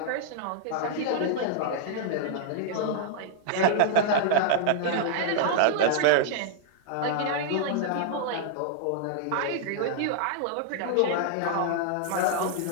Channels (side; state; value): both; different; correlation -0.01